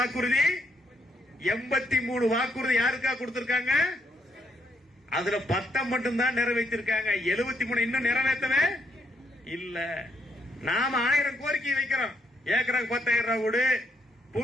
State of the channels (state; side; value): normal; both; correlation 0.75